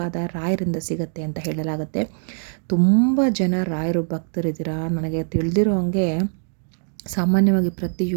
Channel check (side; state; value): left; silent; 58 dB below the other